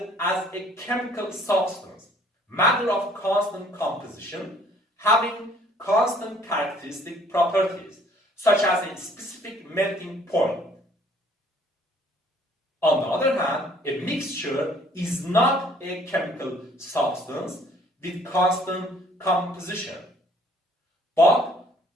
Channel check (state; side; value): normal; both; correlation 0.58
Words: as a chemical substance, matter of constant composition, having constant characteristic properties, such as a specific melting point. On the other hand, a mixture is not a chemical substance with constant composition, but